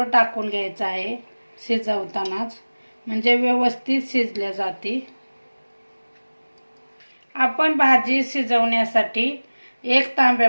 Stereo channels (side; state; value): both; inverted; correlation -1.00